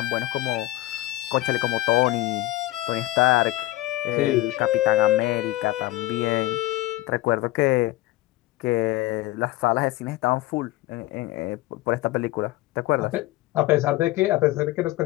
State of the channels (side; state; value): right; quieter; 17.7 dB